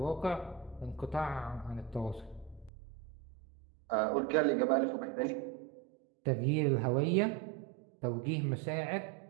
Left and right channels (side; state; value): left; drops out; at 2.7 s